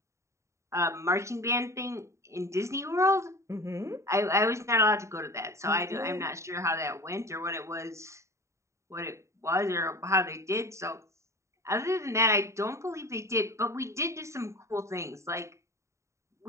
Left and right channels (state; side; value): late; left; 0.14 ms